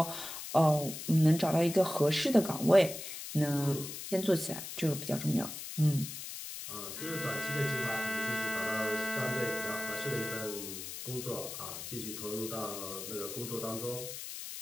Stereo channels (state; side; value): noise; left; hiss, 8 dB below the sound